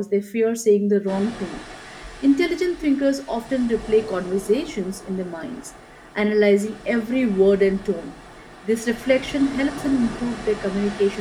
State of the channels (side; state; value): both; identical; correlation 1.00